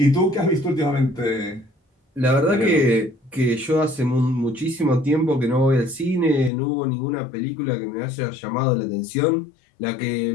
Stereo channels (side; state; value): right; drops out; at 6.5 s